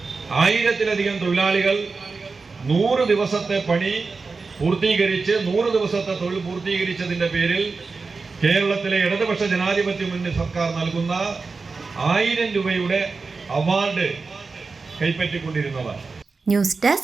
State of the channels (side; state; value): left; quieter; 4.3 dB